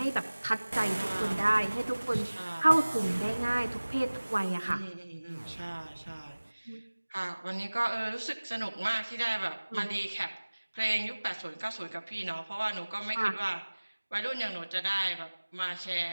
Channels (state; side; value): inverted; both; correlation -1.00